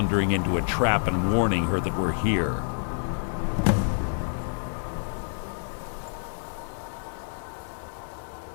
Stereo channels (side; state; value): right; silent; 60 dB below the other